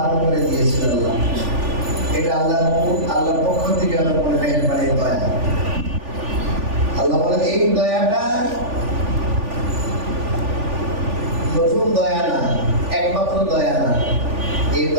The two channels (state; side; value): late; left; 3.4 ms